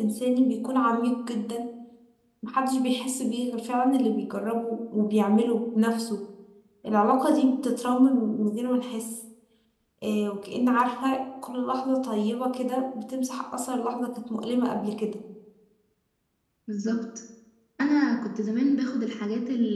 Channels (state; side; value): identical; both; correlation 1.00